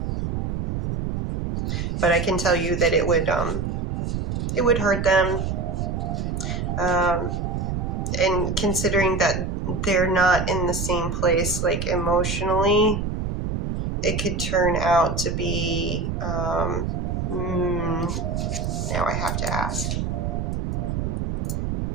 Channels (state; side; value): noise; right; rumble, 2 dB below the sound